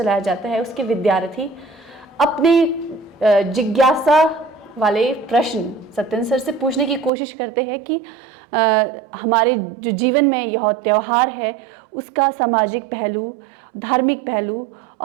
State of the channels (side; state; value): left; drops out; at 7.1 s